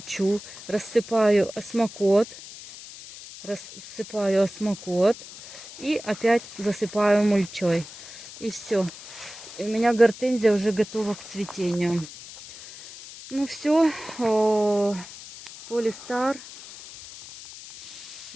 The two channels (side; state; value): left; noise; hiss, 15 dB below the sound